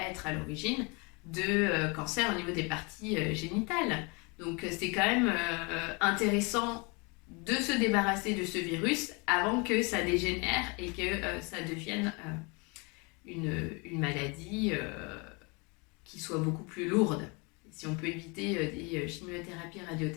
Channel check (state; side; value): quieter; right; 30.0 dB